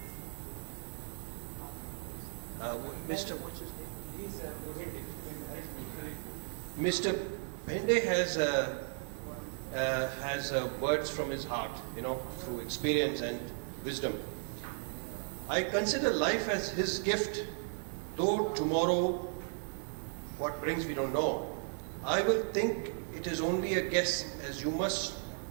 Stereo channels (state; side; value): silent; left; 54 dB below the other